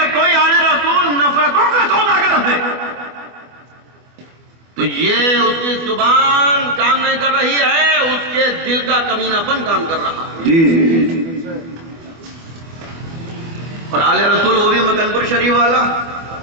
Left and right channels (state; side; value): late; left; 24 ms